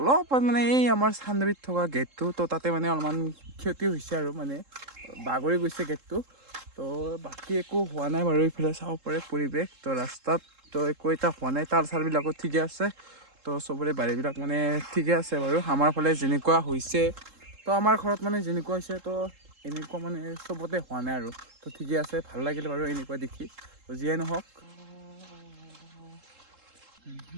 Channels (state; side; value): late; left; 3.7 ms